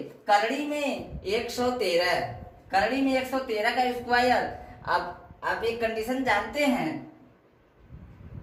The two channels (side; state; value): both; identical; correlation 1.00